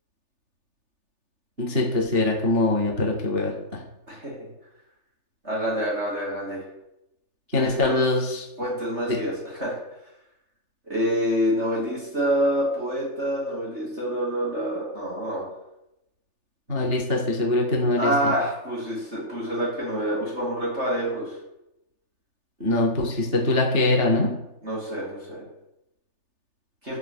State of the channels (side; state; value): left; late; 3.4 ms